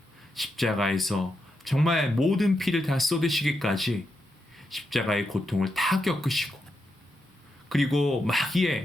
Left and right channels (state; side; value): normal; both; correlation 0.85